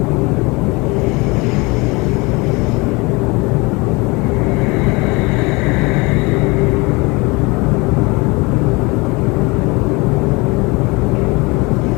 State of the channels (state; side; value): quieter; right; 25.8 dB